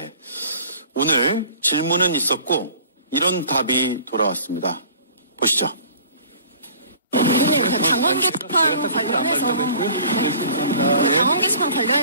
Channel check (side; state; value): both; inverted; correlation -0.49